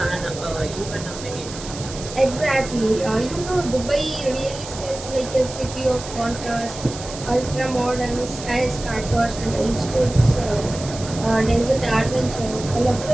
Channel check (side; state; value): right; noise; hiss, 12 dB below the sound